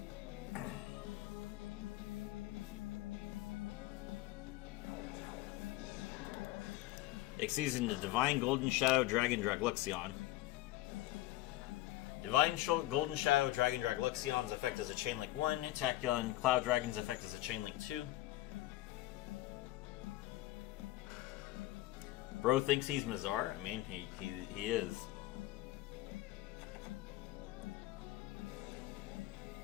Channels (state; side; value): quieter; right; 16.7 dB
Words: Exceeds into Divine Golden Shadow Dragon Dragluxion. Divine Golden Shadow Dragon Dragluxion's effect is a Chainlink 1. Tachyon Cloud Dragon's effect is a Chainlink 2. Bro thinks he's Mazar. I mean, he is.